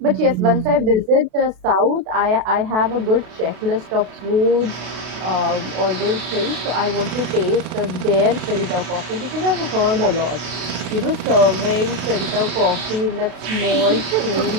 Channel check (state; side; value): late; left; 32 ms